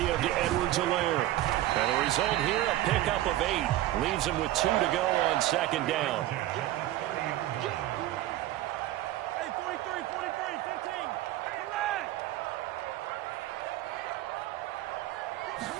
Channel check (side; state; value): left; quieter; 14.9 dB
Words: to Edwards-Helaire. And the result here, a pickup of 8. Leaves him with 2 to go on 2nd down.